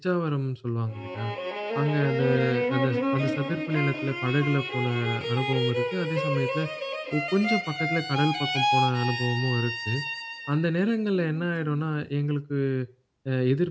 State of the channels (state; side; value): identical; both; correlation 1.00